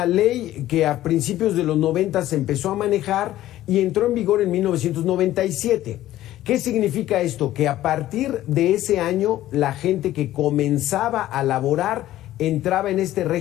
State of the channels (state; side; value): quieter; right; 14.2 dB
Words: ley que a principios de los 90 se empezó a manejar y entró en vigor en 1997. ¿Qué significa esto? Que a partir de ese año la gente que comenzaba a laborar entraba en este